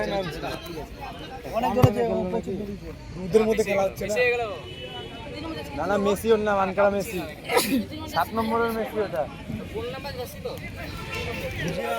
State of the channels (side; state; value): both; identical; correlation 1.00